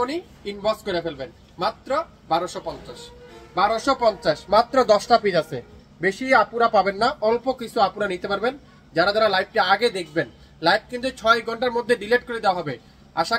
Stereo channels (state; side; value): identical; both; correlation 1.00